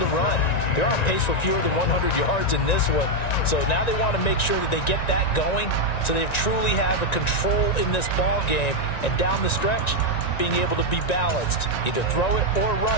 run. They're on pace for fewer than 100 yards in this one, so now they want to make sure that they get that going so they truly have a control in this ball game, and down the stretch, being able to be balanced, either throw it or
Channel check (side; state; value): right; late; 1.9 ms